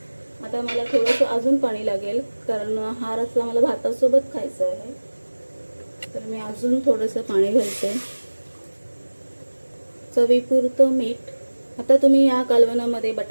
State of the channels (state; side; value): inverted; both; correlation -1.00